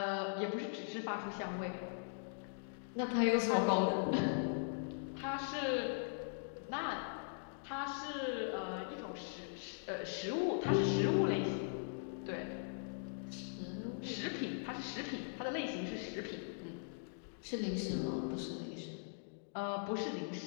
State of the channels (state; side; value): silent; right; digital silence